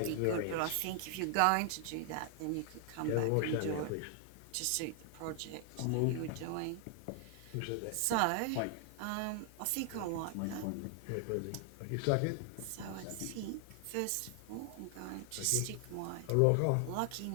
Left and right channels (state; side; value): different; both; correlation 0.00